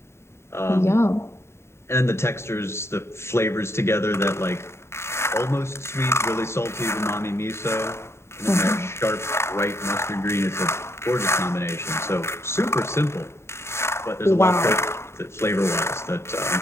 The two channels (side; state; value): right; late; 0.13 ms